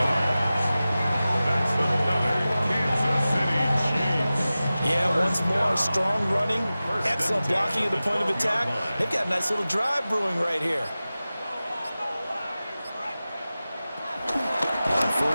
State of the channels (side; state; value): both; inverted; correlation -0.96